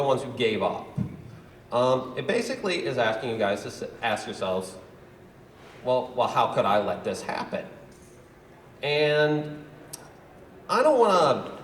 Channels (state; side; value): identical; both; correlation 1.00